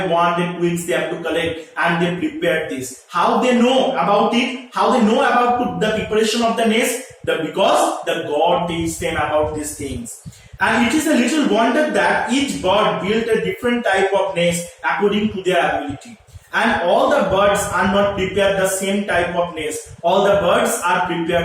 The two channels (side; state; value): both; identical; correlation 1.00